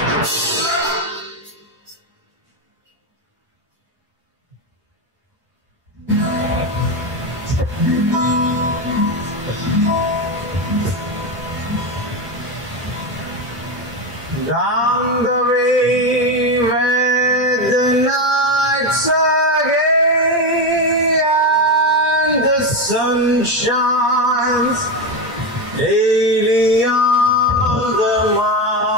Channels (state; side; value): normal; both; correlation 0.13